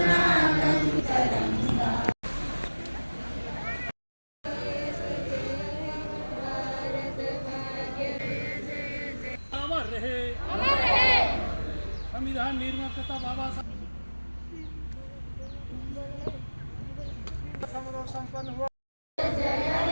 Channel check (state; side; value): inverted; both; correlation -1.00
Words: अमर रहे संविधान निर्माता बाबा साहब संपन्न हुआ।